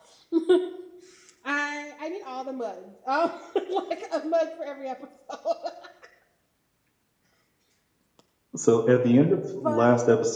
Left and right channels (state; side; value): identical; both; correlation 1.00